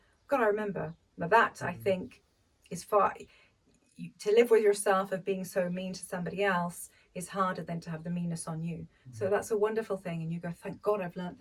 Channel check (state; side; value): identical; both; correlation 1.00